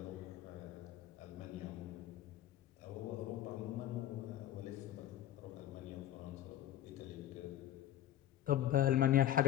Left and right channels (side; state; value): right; quieter; 12.3 dB